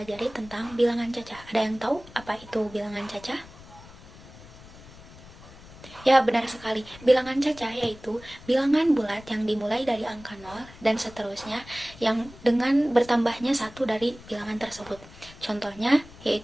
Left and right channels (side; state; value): left; noise; rumble, 19 dB below the sound